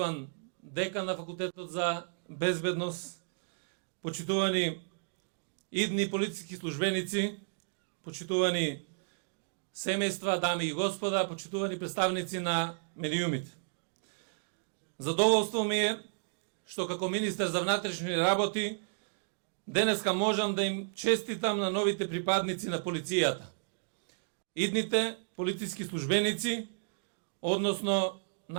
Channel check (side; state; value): left; silent; digital silence